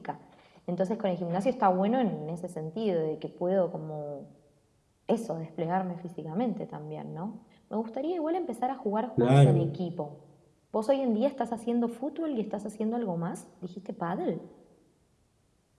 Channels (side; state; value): both; identical; correlation 1.00